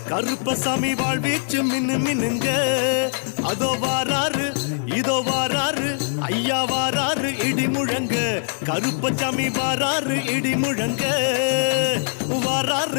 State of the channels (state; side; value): silent; right; digital silence